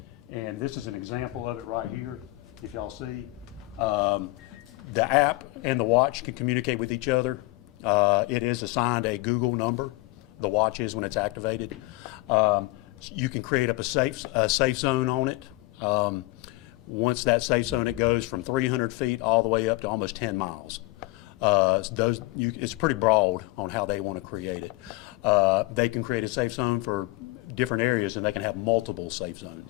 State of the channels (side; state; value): right; quieter; 21.5 dB